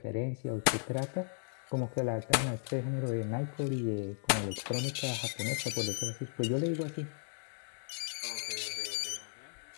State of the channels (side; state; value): right; silent; 54 dB below the other